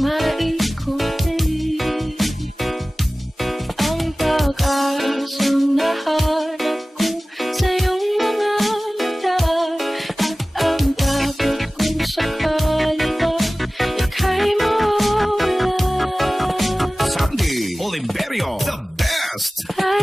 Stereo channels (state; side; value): normal; both; correlation 0.98